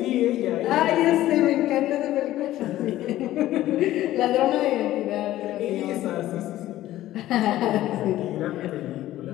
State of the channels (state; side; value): quieter; right; 14.6 dB